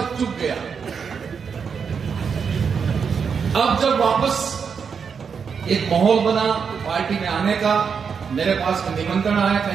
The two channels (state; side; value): quieter; left; 6.3 dB